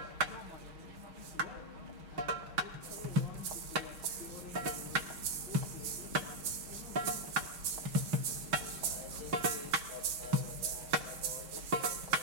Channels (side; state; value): left; late; 6.3 ms